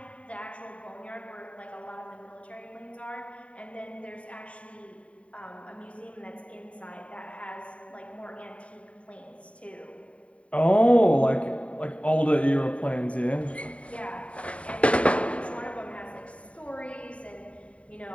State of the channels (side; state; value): right; late; 0.064 ms